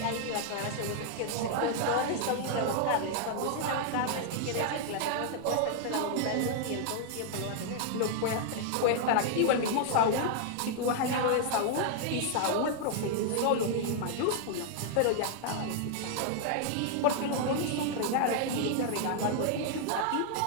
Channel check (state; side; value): different; both; correlation -0.01